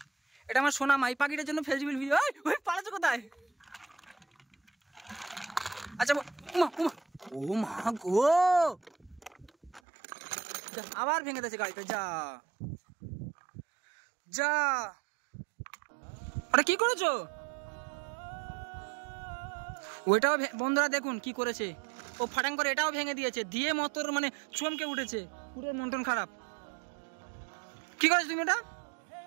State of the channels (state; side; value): drops out; left; at 9.8 s